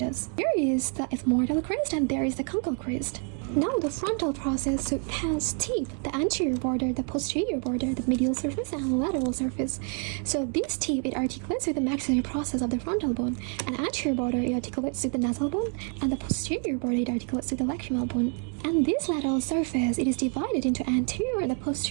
There is the ethmoidal crest, and there is the conchal crest. Now the frontal process, so it has teeth, the anterior border, the posterior border, the medial surface, and the lateral surface. So this teeth, it articulates with the maxillary process of the frontal bone, and the anterior border, it articulates with the nasal bone, and the posterior border, it articulates with the lacrimal bone. And this lateral surface, it is divided into anterior and the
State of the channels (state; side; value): quieter; left; 39.3 dB